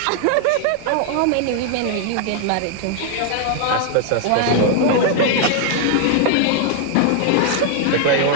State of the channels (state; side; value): different; both; correlation 0.00